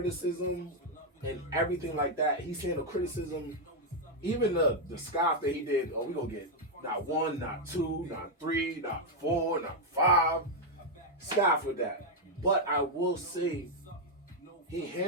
and everything like that. He's handled criticism, even the scoff that he did. Oh, we're going to get not 1, not 2, not 3, not 4, not 5. Scoff with that. But I will say he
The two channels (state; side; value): normal; both; correlation 0.00